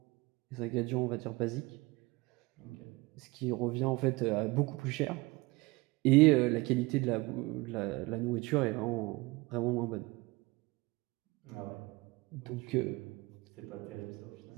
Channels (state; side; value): quieter; left; 23.4 dB